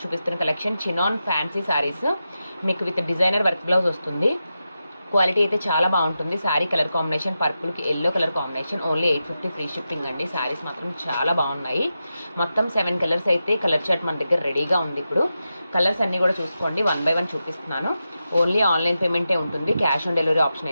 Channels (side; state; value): both; inverted; correlation -0.90